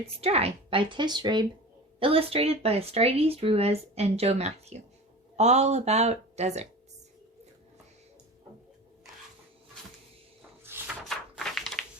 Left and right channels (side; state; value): both; normal; correlation 0.34